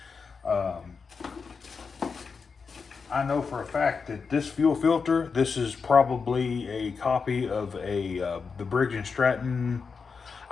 I know for a fact that this fuel filter, this is probably a copy of the Briggs & Stratton.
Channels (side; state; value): right; quieter; 5.3 dB